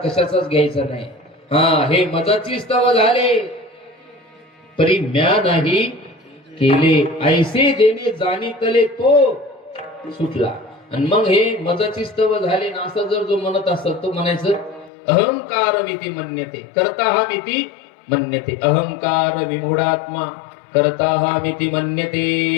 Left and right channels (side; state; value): right; drops out; at 14.9 s